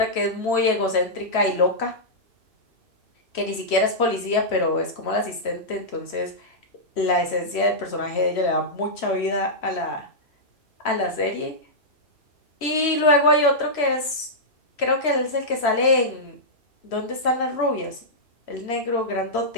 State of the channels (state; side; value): late; right; 3.1 ms